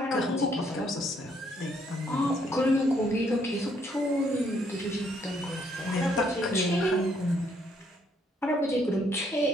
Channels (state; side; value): normal; both; correlation 0.69